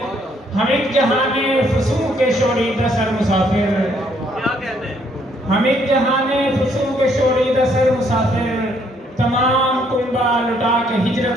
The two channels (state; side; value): normal; both; correlation 0.68